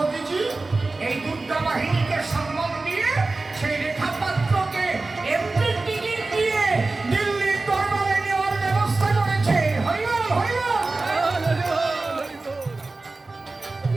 এই দুর্গা বাহিনীকে সম্মান দিয়ে সেই রেখা পাত্রকে এমপি টিকিট দিয়ে দিল্লির দরবারে নেওয়ার ব্যবস্থা করেছে।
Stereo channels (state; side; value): quieter; left; 3.4 dB